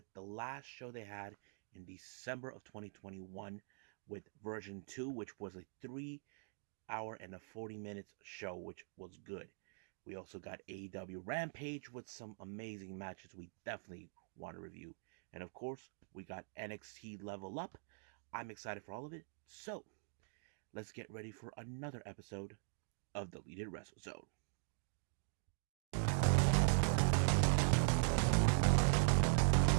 the last show they had in December of 2021 with version 2, which was a 3 hour and a 40 minutes show, which was good. We also got AEW Rampage with some amazing matches we definitely want to review. And of course, we got NXT Level Up. I'm excited for all of it. So let's get ready for another episode of the Deleted Wrestle Zone.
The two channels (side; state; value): left; silent; digital silence